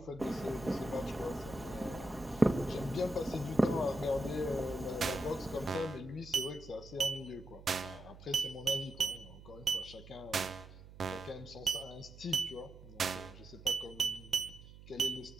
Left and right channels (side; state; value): right; noise; hum, 17 dB below the sound